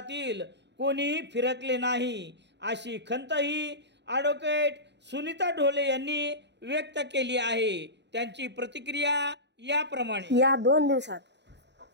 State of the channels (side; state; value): left; late; 0.51 ms